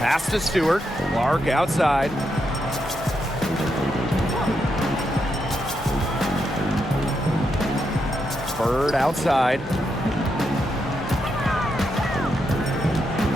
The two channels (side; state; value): both; normal; correlation 0.82